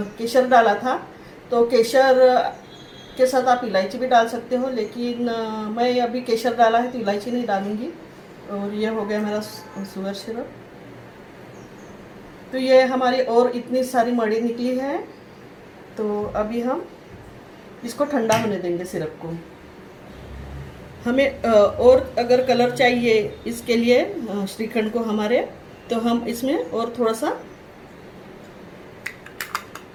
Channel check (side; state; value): both; identical; correlation 1.00